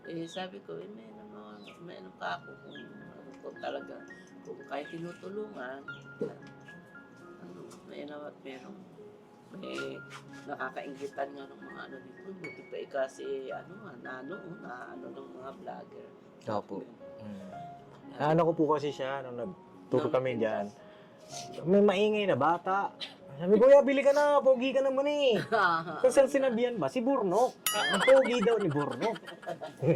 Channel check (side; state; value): both; identical; correlation 1.00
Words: sabi ko, may ano pa ako kung talaga, kung kahit tinutulungan, may may nakakainggitan nga ng mga dito. Buti pa kasi, ng mga vlogger. Opo. Ano ko po kasi siya, nung nagturo kami dyan, may maingay na bata. Sabi, kuya, bili ka na, pogi ka naman eh. Kung saan sinabihan ba? Si Burnok. Ang pogi daw ni Burnok.